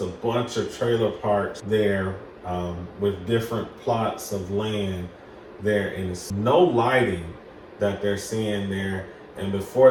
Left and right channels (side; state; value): both; identical; correlation 1.00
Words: a bunch of trailer parks there with different plots of land there, and it's no lighting that they're seeing there. And